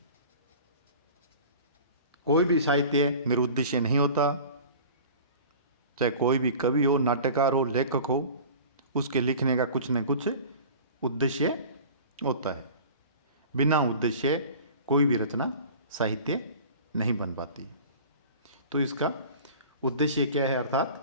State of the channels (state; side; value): inverted; both; correlation -0.41